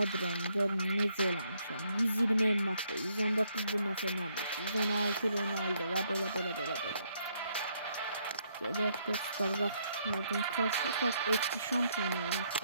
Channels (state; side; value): inverted; both; correlation -0.72